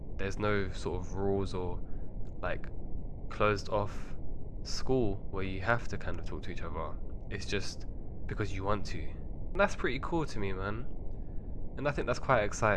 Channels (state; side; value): identical; both; correlation 1.00